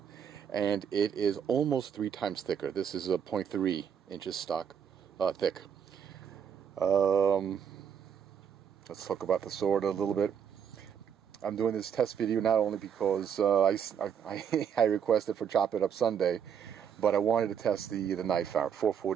And it is almost 3 times thicker. This is a 0.3 inches stock thick. Let's talk about the sword a little bit. I'm doing this test video not only because I requested for Chop It Up Sunday, but I wanted to test the knife out.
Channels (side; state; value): left; quieter; 7.9 dB